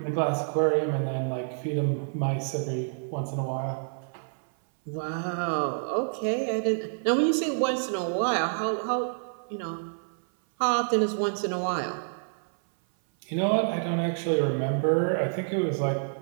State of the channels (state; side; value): silent; left; 58 dB below the other